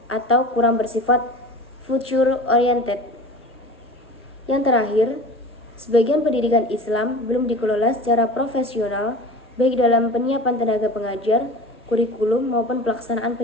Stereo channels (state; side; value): normal; both; correlation 0.37